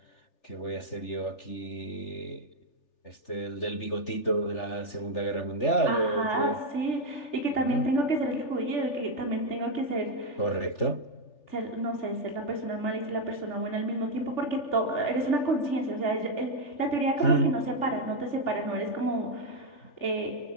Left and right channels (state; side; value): late; right; 3.4 ms